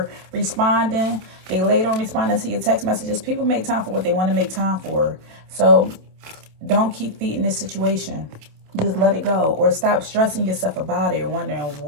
responding, they late on responding to your text messages. People make time for what they want to make time for. So don't keep feeding this situation. Just let it go. Or stop stressing yourself about it or wondering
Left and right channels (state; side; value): late; left; 27 ms